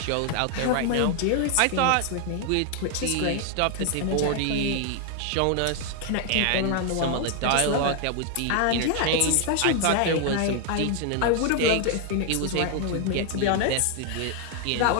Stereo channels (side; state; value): both; different; correlation 0.00